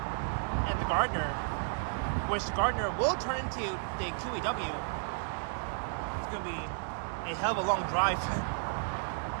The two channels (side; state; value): left; silent; 56 dB below the other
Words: and the Gardner, which the Gardner will turn into the QEW. It's going to be a hell of a long drive.